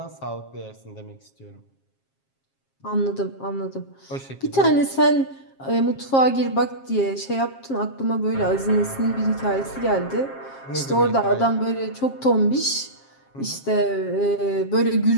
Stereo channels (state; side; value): late; right; 7.5 ms